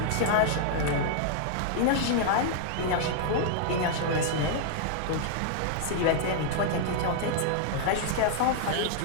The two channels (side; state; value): both; different; correlation -0.01